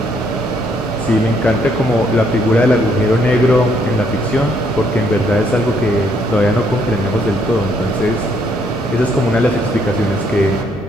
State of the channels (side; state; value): both; normal; correlation 0.70